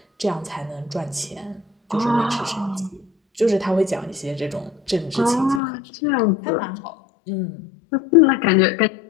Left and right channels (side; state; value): right; drops out; at 5.6 s